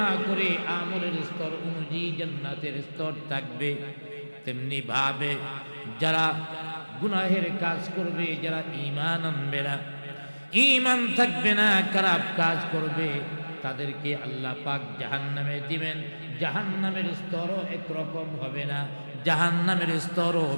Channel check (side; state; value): both; inverted; correlation -1.00